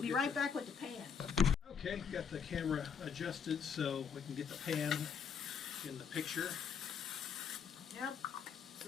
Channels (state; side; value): quieter; right; 6.8 dB